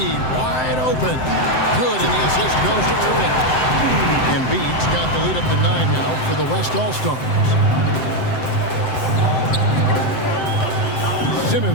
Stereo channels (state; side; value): late; right; 7.8 ms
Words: wide open. Good, and the assist goes to Irving. Embiid's got the lead up to 9 now for the West All-Stars.